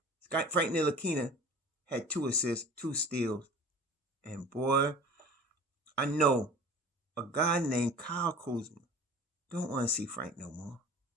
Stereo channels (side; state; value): both; normal; correlation 0.42